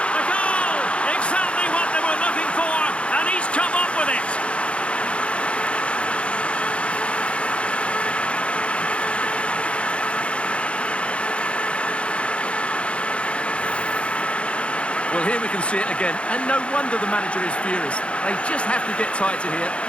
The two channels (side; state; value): right; late; 0.060 ms